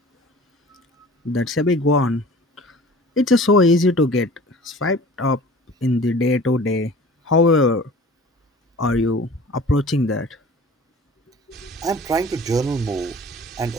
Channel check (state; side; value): normal; both; correlation 0.44